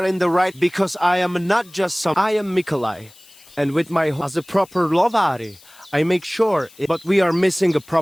in the right because I am not just some. I am Mikolai. And with my as a proper Lovari, I make sure. But we are missing a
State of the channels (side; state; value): left; noise; hiss, 25 dB below the sound